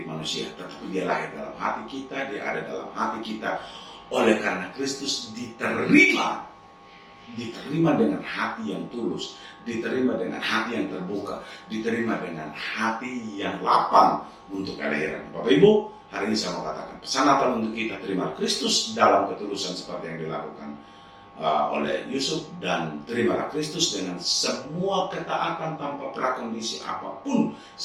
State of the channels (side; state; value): both; identical; correlation 1.00